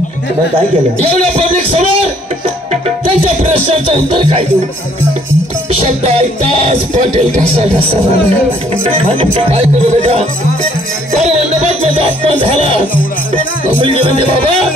मग काय केलं? एवढ्या पब्लिक समोर त्यांच्या प्रश्नाचं उत्तर काय देऊ? शब्द ऐकताच पाटील कसा काय करू बेटा? तर मंडपात माझा अपमान झाला. मुलगी म्हणते बाबा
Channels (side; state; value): both; normal; correlation 0.63